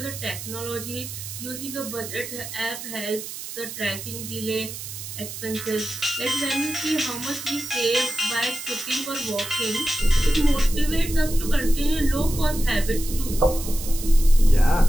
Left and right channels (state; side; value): noise; right; hiss, 9 dB below the sound